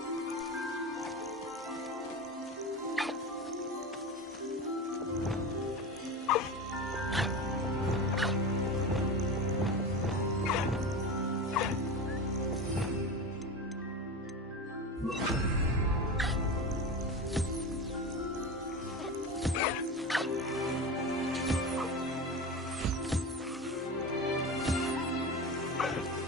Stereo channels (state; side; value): normal; both; correlation 0.26